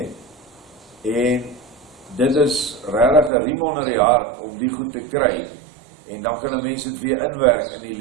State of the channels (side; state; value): left; drops out; at 3.3 s